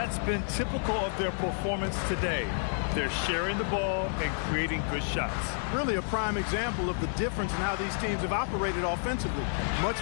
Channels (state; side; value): silent; right; digital silence